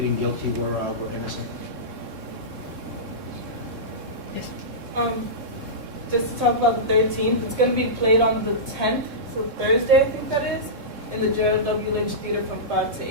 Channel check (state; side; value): late; left; 3.7 ms